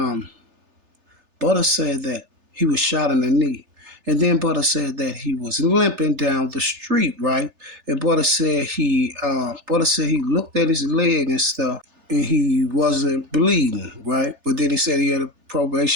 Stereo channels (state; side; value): late; left; 3.4 ms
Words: Butta said that he was shot in the knee. And then Butta said that he was limping down the street, right? And Butta said he looked at his leg and stuff, and he wasn't bleeding, right? But then he said he had a